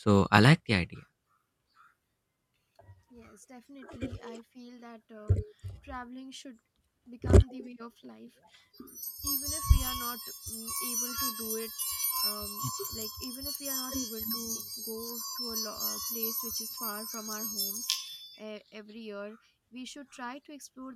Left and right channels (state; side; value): identical; both; correlation 1.00